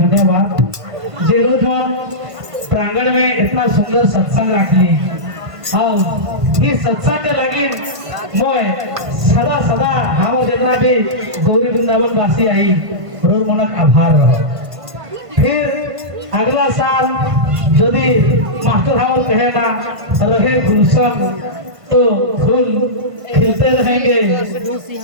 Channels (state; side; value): late; left; 1.5 ms